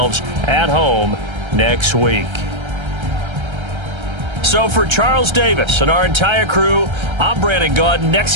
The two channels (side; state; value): left; late; 1.3 ms